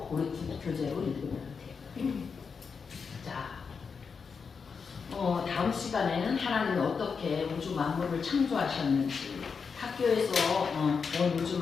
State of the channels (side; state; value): right; quieter; 5.6 dB